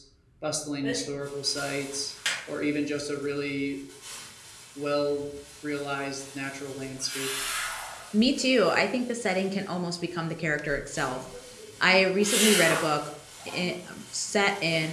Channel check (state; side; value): identical; both; correlation 1.00